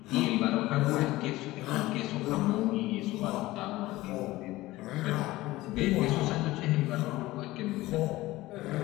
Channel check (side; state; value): right; quieter; 18.1 dB